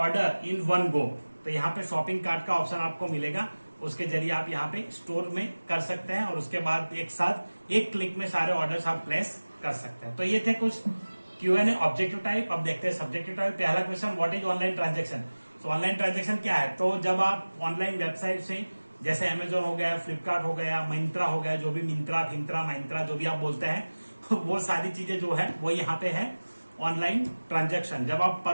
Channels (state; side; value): inverted; both; correlation -1.00